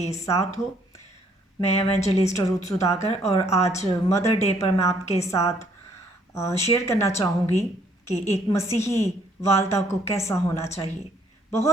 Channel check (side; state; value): both; normal; correlation 0.65